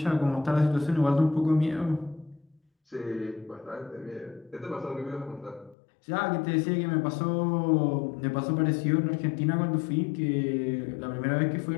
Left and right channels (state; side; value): drops out; right; at 5.8 s